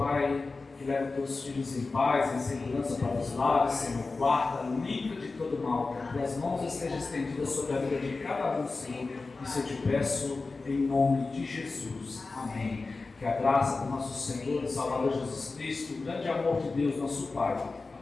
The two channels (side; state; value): right; quieter; 3.8 dB